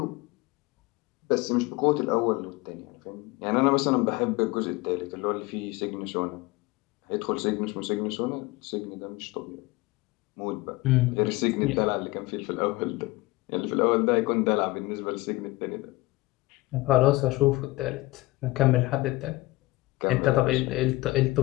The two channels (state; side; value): quieter; right; 20.8 dB